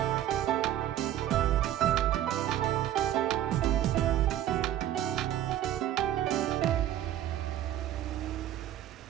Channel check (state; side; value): quieter; left; 12.2 dB